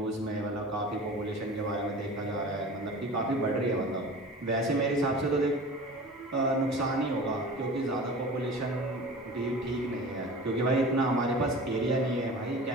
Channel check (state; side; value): normal; both; correlation 0.37